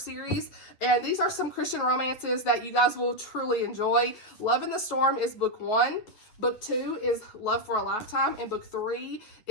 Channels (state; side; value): late; right; 9.4 ms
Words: And these are some Christian romances that you guys will truly enjoy. Love in the Storm is book 1. Book 2 is Love for a Lifetime, and book 3